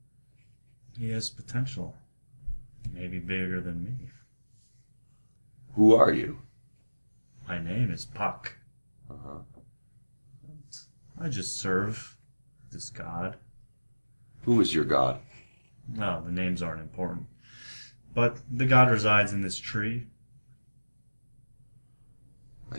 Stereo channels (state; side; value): inverted; both; correlation -1.00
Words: He has potential. Maybe bigger than me. Who are you? My name is Puck. Uh-huh. I just serve this god. Who is your god? Well, the names aren't important. But the god resides in this tree.